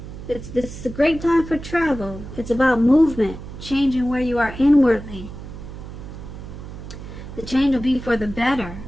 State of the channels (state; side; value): noise; right; hum, 12 dB below the sound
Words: It's a great time for travel. It's about movement, changing where you are inwardly. The change will be for the better.